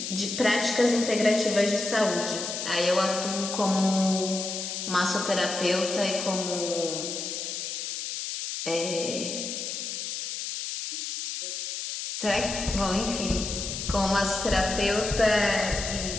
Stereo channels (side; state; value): left; noise; hiss, 5 dB below the sound